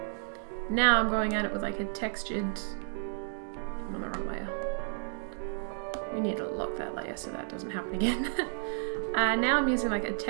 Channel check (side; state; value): left; silent; digital silence